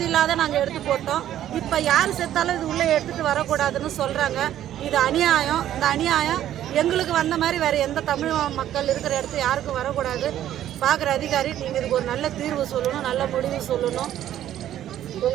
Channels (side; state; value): left; quieter; 11.8 dB